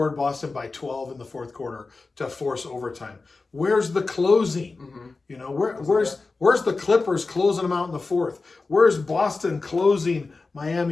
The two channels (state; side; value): quieter; right; 3.9 dB